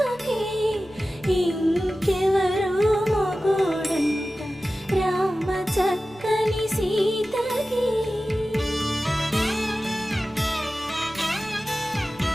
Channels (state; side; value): normal; both; correlation 0.95